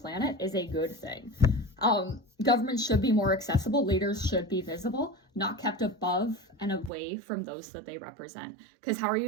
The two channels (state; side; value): drops out; left; at 6.9 s